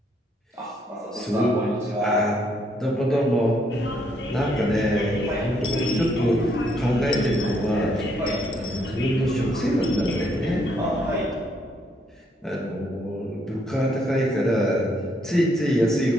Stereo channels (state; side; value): normal; both; correlation 0.71